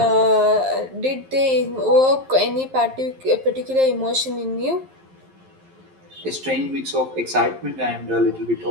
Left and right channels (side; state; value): left; late; 11 ms